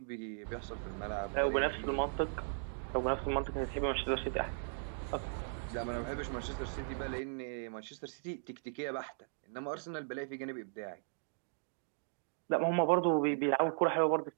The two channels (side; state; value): left; silent; digital silence